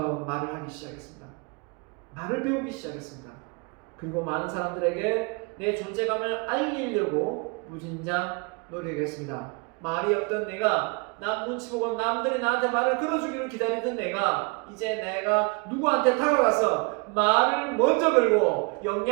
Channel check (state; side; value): quieter; left; 30.8 dB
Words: 말을 하기 시작했습니다. 말을 배우기 시작했습니다. 그리고 많은 사람들에게 내 존재감을 알리려고 무진장 노력했습니다. 말이 없던 내가, 남 눈치 보고 남들이 나한테 말을 걸어주기를 기다리던 내가, 이제 내가 누구한테 다가가서 말을 먼저 걸고